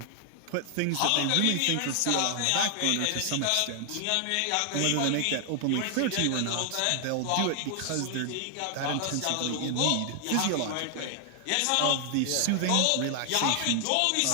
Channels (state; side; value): different; both; correlation 0.00